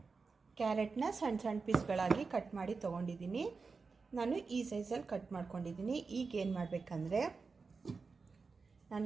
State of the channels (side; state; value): left; quieter; 4.6 dB